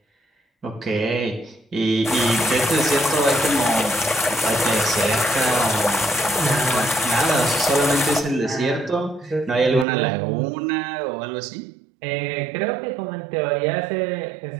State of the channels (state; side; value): drops out; left; at 9.9 s